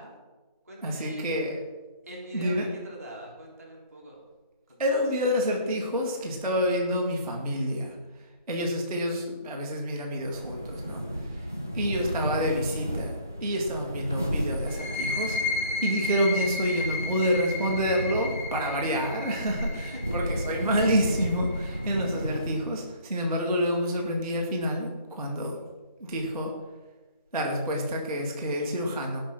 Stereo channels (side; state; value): both; inverted; correlation -0.53